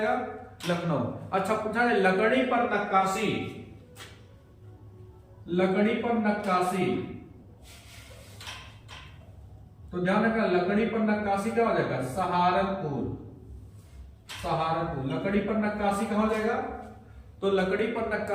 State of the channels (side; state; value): both; identical; correlation 1.00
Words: लखनऊ। अच्छा पूछा है लकड़ी पर नक्काशी, लकड़ी पर नक्काशी, तो ध्यान रखना लकड़ी पर नक्काशी क्या हो जाएगा? सहारनपुर, सहारनपुर। लकड़ी पर नक्काशी कहां हो जाएगा? तो लकड़ी पर